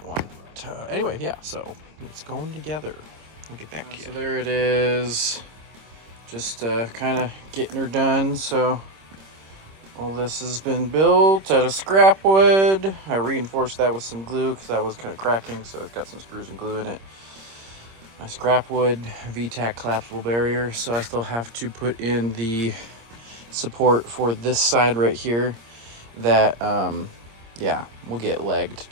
one. But, anyway, yeah, so it's going together. I'll get back to you. So there it is. Just kind of getting her done. So all this has been built out of scrap wood. I reinforced that with some glue because that was kind of cracking, so it's got some screws and glue in it. My scrap wood V-tac collapsible barrier. So I still have to put in the support for this side right here that yeah, will get legged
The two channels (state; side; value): late; left; 26 ms